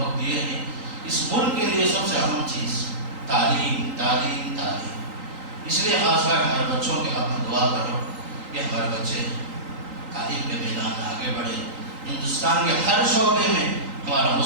دیے ہیں، اس ملک کے لیے سب سے اہم چیز تعلیم، تعلیم، تعلیم۔ اس لیے خاص کر ہمارے بچوں کے حق میں دعا کرو کہ ہمارے بچے تعلیم کے میدان میں آگے بڑھے، ہندوستان کے ہر شعبے میں ہمارا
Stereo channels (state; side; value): late; left; 3.8 ms